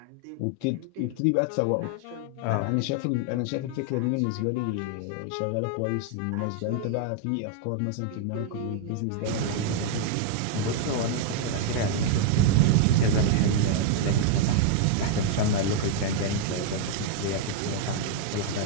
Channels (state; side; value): different; both; correlation 0.00